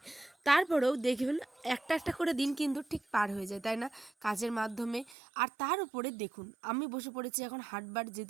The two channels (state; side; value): drops out; left; at 5.2 s